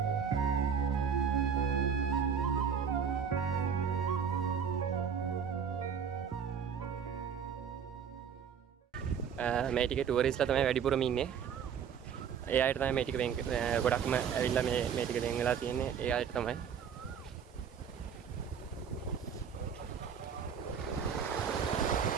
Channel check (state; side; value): quieter; left; 7.3 dB